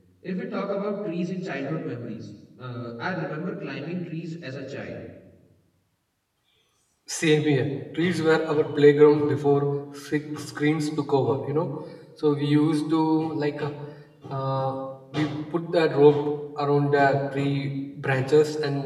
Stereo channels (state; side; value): identical; both; correlation 1.00